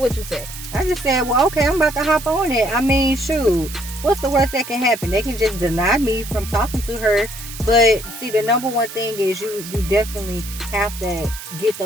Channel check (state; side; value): noise; right; hiss, 12 dB below the sound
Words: you say? I just said, well, okay, I'm about to hop on it. I mean, shoot, what's the worst that can happen? They can just deny me from talking to her. But see, the number one thing is you definitely have to get